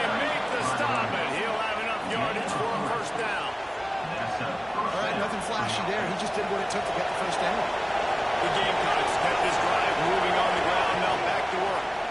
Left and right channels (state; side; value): identical; both; correlation 1.00